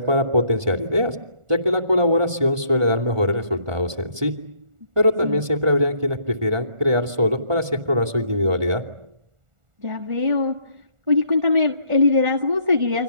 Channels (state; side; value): late; left; 1.4 ms